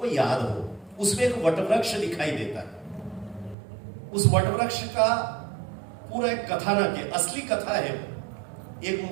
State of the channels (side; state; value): left; drops out; at 3.6 s